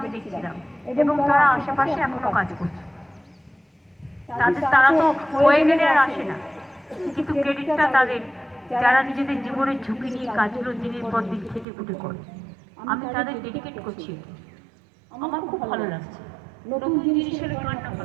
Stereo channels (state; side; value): drops out; left; at 11.7 s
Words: দেখছিলাম, এবং তারা আশেপাশে এখনো কাজ করছে। তারা তো হয়ে গেলে আর আসে না, কিন্তু ক্রেডিটটা তাদের, যারা নিজেদের জীবনের ঝুঁকি নিয়ে কাজগুলো দিনের পর দিন খেটে খুঁটে করে। আমি তাদের ডেডিকেট করছি। আমার খুব ভালো লাগছে। নতুন জিনিস হলে কার না